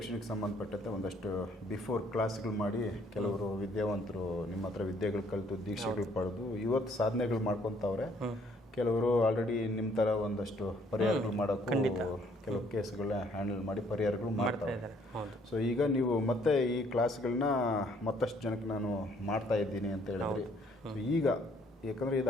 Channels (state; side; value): normal; both; correlation 0.64